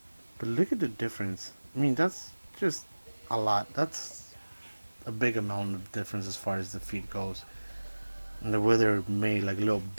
But look at the difference. I mean, that's just a lot. That's a big amount of difference as far as the feet goes. And the way they're made like little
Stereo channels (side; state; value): both; inverted; correlation -1.00